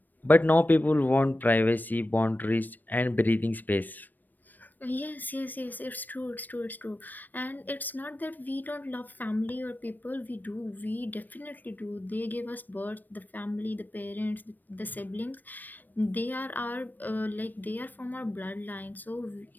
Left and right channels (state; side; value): late; right; 0.089 ms